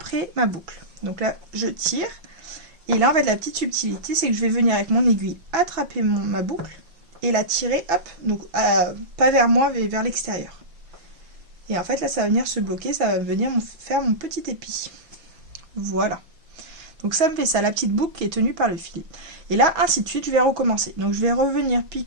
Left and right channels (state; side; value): late; left; 6.0 ms